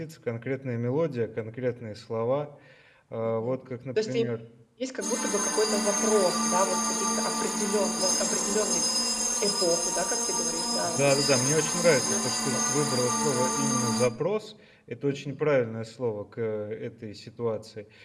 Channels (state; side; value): identical; both; correlation 1.00